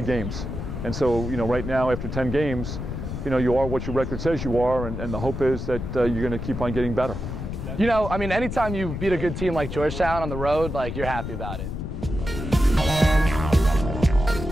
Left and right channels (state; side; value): noise; left; rumble, 6 dB below the sound